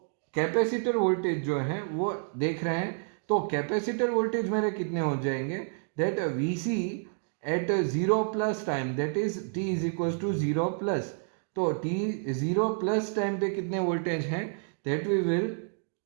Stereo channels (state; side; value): silent; left; 58 dB below the other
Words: कैपेसिटर वोल्टेज जो है वो देख रहे हैं। तो कैपेसिटर वोल्टेज मेरे कितने हो जाएंगे, that Vc at 0 plus time, that is t is equal to 0 plus, तो t 0 प्लस टाइम पे कितने वोल्टेज हैं, दैट वी विल,